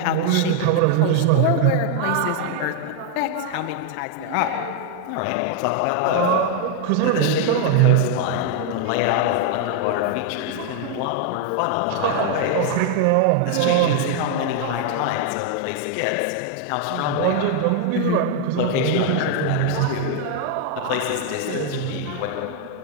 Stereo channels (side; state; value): both; different; correlation 0.00